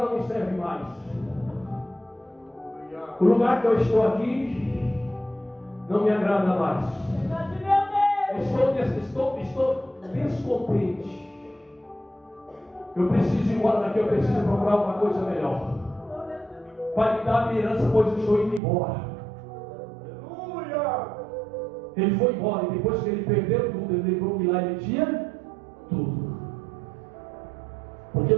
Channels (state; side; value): drops out; left; at 18.6 s